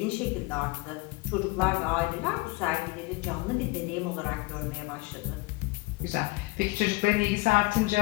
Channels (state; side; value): quieter; right; 23.4 dB